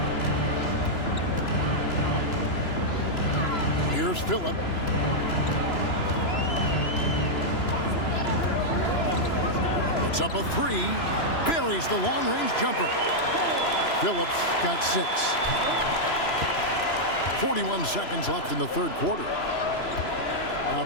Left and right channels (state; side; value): late; right; 3.0 ms